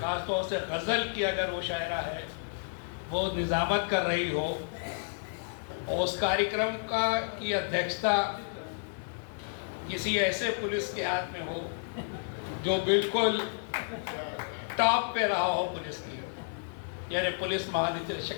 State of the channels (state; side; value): silent; right; digital silence